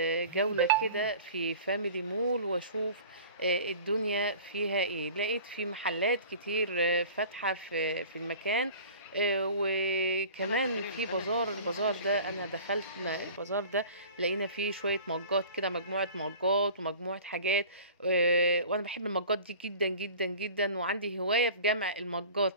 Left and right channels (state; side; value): inverted; both; correlation -0.43